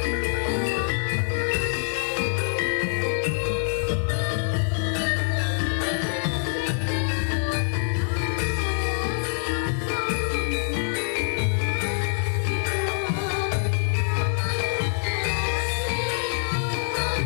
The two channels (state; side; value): silent; right; 62 dB below the other